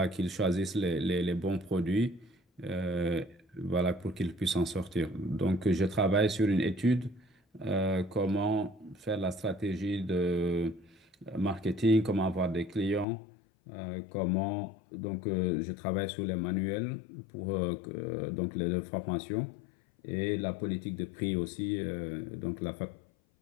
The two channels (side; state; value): right; drops out; at 13.1 s